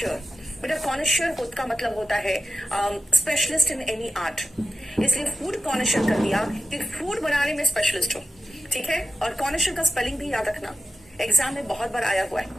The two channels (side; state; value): both; normal; correlation 0.89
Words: बेटा कॉनिशर का मतलब होता है स्पेशलिस्ट इन एनी आर्ट, इसलिए फूड कॉनिशर कर दिया कि फूड बनाने में स्पेशलिस्ट हो। ठीक है? और कॉनिशर का स्पेलिंग भी याद रखना, एग्जाम में बहुत बार आया हुआ